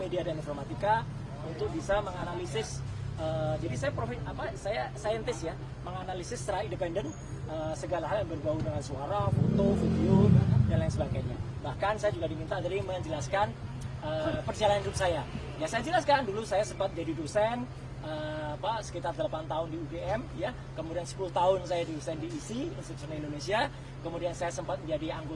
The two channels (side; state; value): both; identical; correlation 1.00